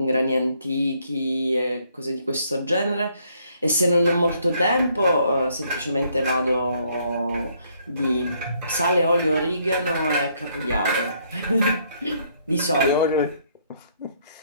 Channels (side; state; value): both; inverted; correlation -0.69